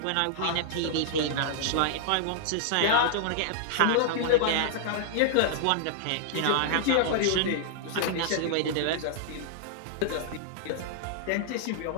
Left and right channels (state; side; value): different; both; correlation -0.01